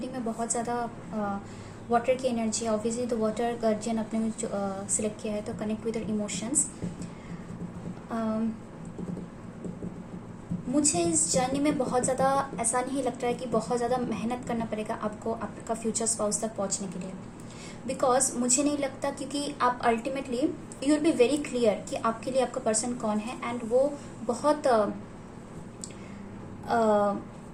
में बहुत ज़्यादा वाटर की एनर्जी है. ऑब्वियसली तो वाटर गार्जियन आपने सिलेक्ट किया है, तो कनेक्ट विद इमोशंस. मुझे इस जर्नी में बहुत ज़्यादा ऐसा नहीं लगता है कि बहुत ज़्यादा मेहनत करना पड़ेगा आपको आपका फ्यूचर स्पाउस तक पहुंचने के लिए. बिकॉज मुझे नहीं लगता, क्योंकि आप ultimately you will be very clear कि आपके लिए आपका पर्सन कौन है. एंड वो बहुत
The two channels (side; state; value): both; identical; correlation 1.00